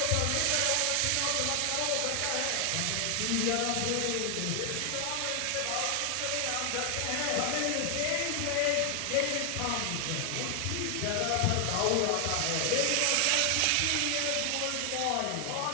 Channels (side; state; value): both; different; correlation 0.00